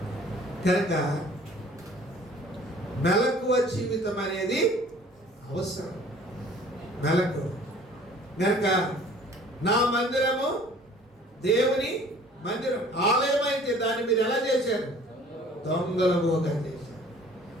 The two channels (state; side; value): normal; both; correlation 0.51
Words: కనుక మెలకువ జీవితం అనేది అవసరం. మెలకువ కనుక నా మందిరము దేవుని మందిరం, ఆలయం అయితే దాన్ని మీరు ఎలా చేశారు? దొంగలముగా చేశారు.